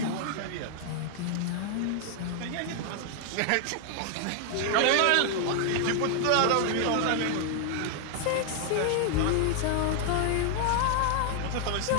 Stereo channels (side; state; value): both; different; correlation 0.00